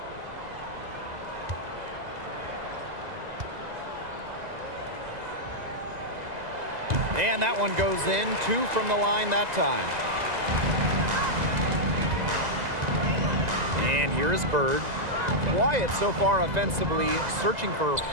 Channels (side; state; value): left; late; 2.0 ms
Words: And that one goes in. 2 from the line that time. And here is Bird. Quiet so far offensively, searching for her